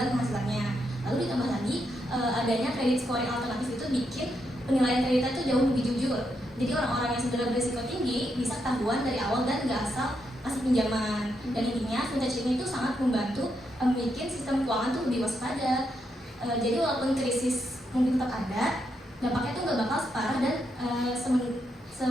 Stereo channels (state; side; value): normal; both; correlation 0.81